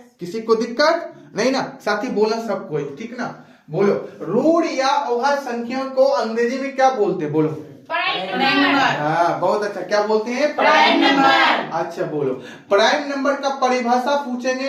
किसी को दिक्कत नहीं ना? साथ ही बोला सब कोई, ठीक ना? बोलो, ऋण या अभाज्य संख्या को अंग्रेजी में क्या बोलते हैं? बोलो। हाँ, बहुत अच्छा। क्या बोलते हैं? Prime number. अच्छा, बोलो, प्राइम नंबर का परिभाषा पूछेंगे।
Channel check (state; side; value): identical; both; correlation 1.00